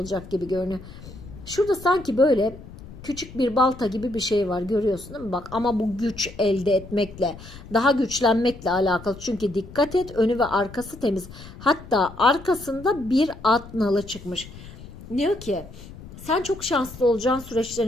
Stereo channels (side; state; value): left; noise; rumble, 16 dB below the sound